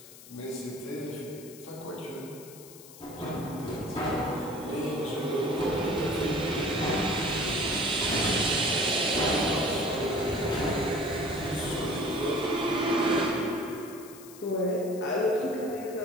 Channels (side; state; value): left; noise; hiss, 18 dB below the sound